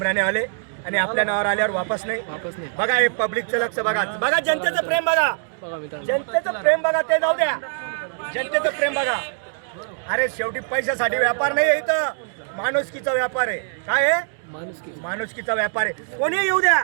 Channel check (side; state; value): left; silent; digital silence